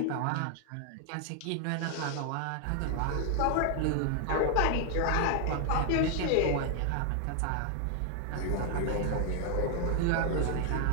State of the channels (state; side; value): different; both; correlation 0.00